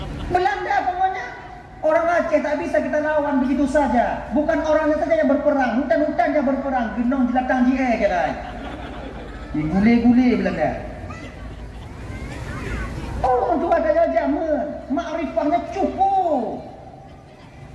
Belanda pokoknya orang Aceh tak bisa kita lawan begitu saja bukan orangnya saja yang berperang hutan-hutan yang berperang genong jilatang je kira digule-gule Belanda orang Tuhan tanya jaman makrifahnya cukup.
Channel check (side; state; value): both; identical; correlation 1.00